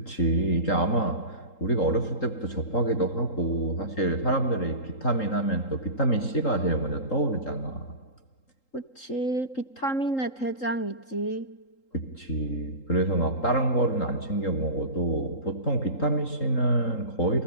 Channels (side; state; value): right; late; 3.8 ms